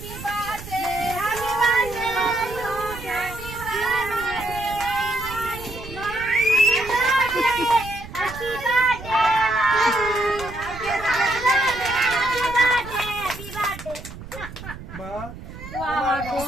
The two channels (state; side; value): noise; right; rumble, 13 dB below the sound